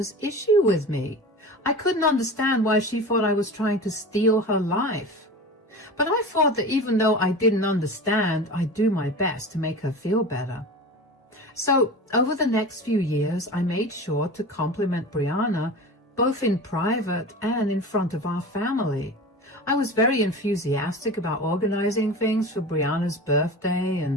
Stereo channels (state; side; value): normal; both; correlation 0.32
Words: issue with me. I couldn't understand why she thought I was trying to steal her life. But I thought that even though I didn't understand, I'd do my best to make her feel better. So over the next few years, I made sure to compliment Brianna both in private and in front of our family. I was very enthusiastic about organizing things for Brianna's birthday,